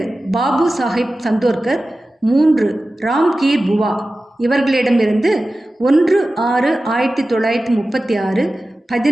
பாபு சாஹிப் சந்தோர்கர், 3 ராம்கீர் புவா இவர்களிடமிருந்து 1/6/1936,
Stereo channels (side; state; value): both; normal; correlation 0.95